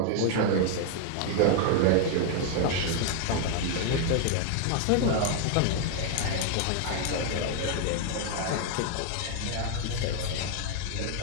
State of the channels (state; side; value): different; both; correlation 0.00